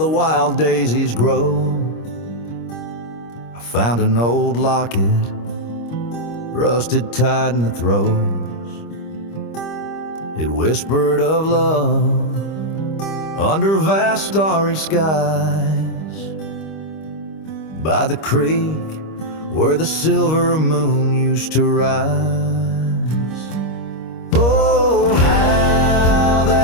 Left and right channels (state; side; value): late; right; 25 ms